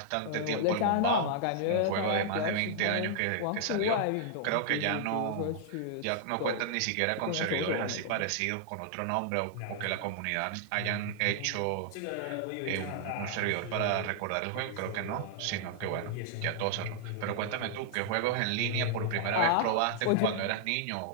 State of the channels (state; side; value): different; both; correlation -0.01